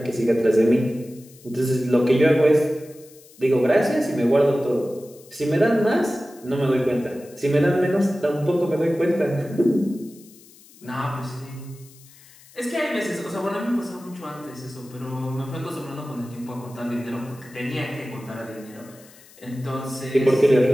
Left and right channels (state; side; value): noise; left; hiss, 24 dB below the sound